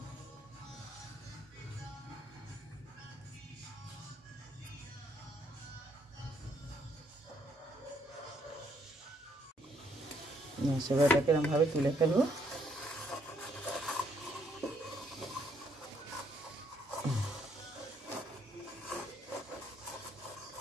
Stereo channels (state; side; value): normal; both; correlation 0.70